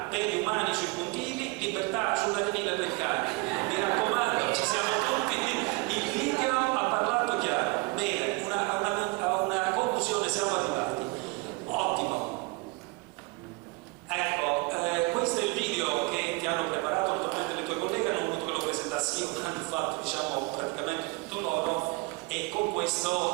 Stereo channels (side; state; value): left; quieter; 25.6 dB